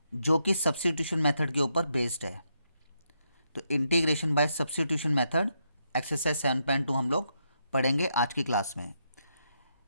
जो कि सब्स्टिट्यूशन मेथड के ऊपर बेस्ड है। तो integration by substitution method exercise 7.2 हम लोग पढ़ेंगे आज की क्लास में।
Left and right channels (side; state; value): both; inverted; correlation -0.80